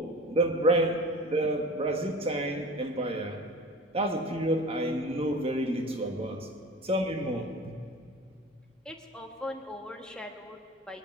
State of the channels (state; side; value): normal; both; correlation 0.37